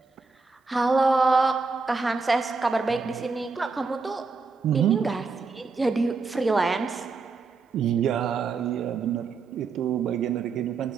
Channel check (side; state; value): left; quieter; 4.5 dB